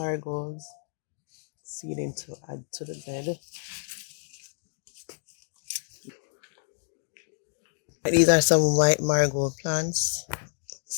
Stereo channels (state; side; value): silent; right; digital silence